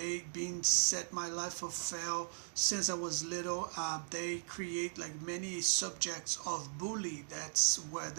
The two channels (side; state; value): left; silent; digital silence